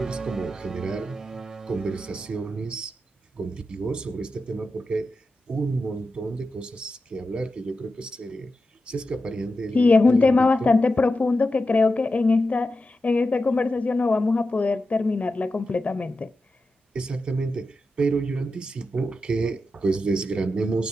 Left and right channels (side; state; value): both; normal; correlation 0.90